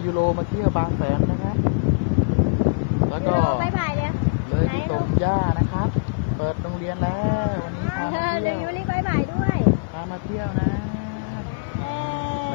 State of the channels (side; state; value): right; quieter; 33.7 dB